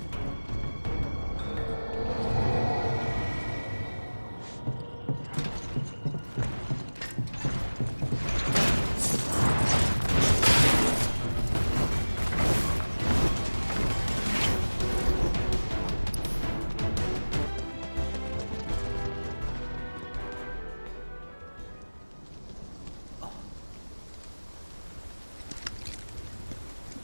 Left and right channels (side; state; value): both; inverted; correlation -1.00